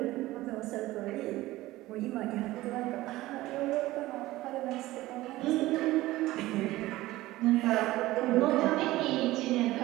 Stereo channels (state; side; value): quieter; left; 17.4 dB